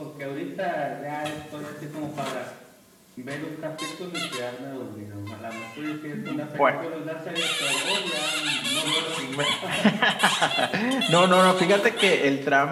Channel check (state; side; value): identical; both; correlation 1.00